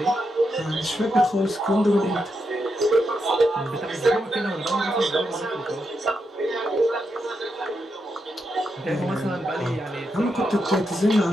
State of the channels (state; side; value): normal; both; correlation 0.84